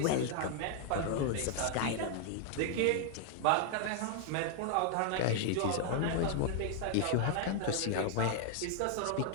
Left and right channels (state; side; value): different; both; correlation 0.00